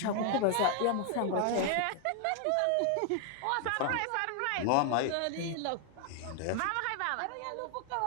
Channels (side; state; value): both; different; correlation 0.00